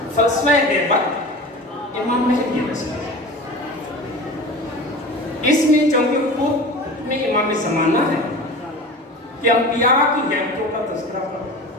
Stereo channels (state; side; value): normal; both; correlation 0.34